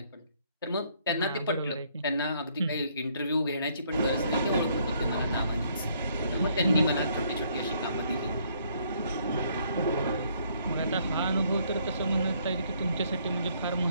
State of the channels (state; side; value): inverted; both; correlation -0.67